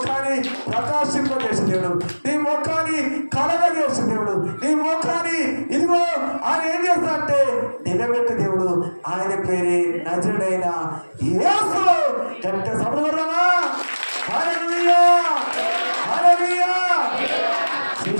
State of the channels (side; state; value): both; inverted; correlation -1.00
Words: ప్రకాశింపజేసే దేవుడు, నీ ముఖాన్ని కలగజేసే దేవుడు, నీ ముఖాన్ని ఇదిగో ఆయన ఏం చేస్తాడంటే నిలబెట్టే దేవుడు. ఆయన పేరే నజరుడైన యేసు. గట్టిగా సభలు కొడదామా? హల్లెలూయా, హల్లెలూయా.